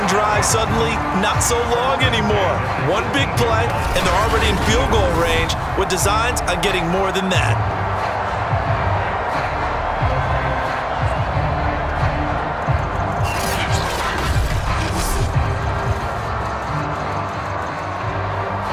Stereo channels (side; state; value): both; identical; correlation 1.00